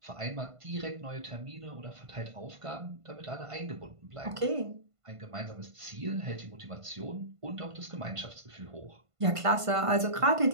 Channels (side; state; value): left; late; 1.5 ms